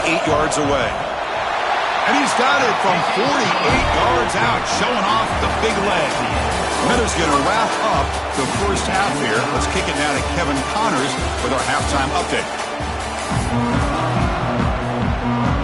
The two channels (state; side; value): identical; both; correlation 1.00